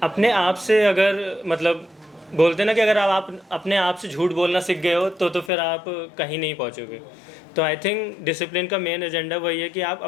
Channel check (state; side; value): drops out; right; at 5.5 s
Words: अपने आप से अगर मतलब बोलते हैं ना कि अगर आप अपने आप से झूठ बोलना सीख गए हो तो फिर आप कहीं नहीं पहुंचोगे। तो आई थिंक डिसिप्लिन का मेन एजेंडा वही है कि आप